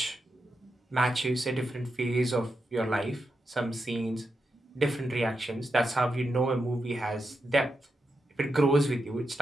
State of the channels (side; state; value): both; normal; correlation 0.87